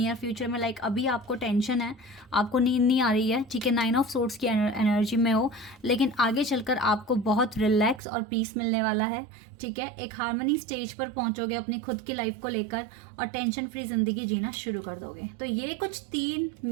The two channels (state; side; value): drops out; left; at 8.0 s